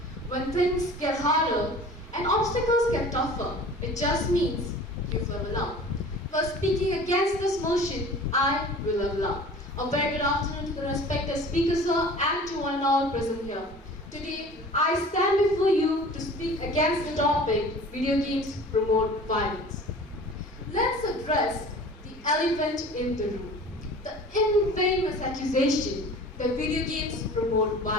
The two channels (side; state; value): both; normal; correlation 0.43